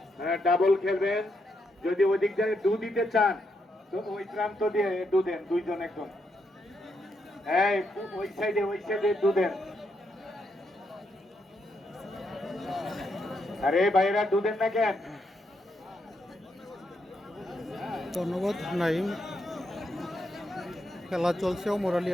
হ্যাঁ ডাবল খেলবেন। যদি ওই দিক দিয়ে দু দিতে চান তো ওই প্রান্ত দিয়ে দু দেন, 2 জন একদম। হ্যাঁ ওই সাইডে দু দেন। আরে ভাইরা দু দেন না কেন? ধন্যবাদ নাইম। খেলা চলছে অমর আলী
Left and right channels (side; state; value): both; normal; correlation 0.80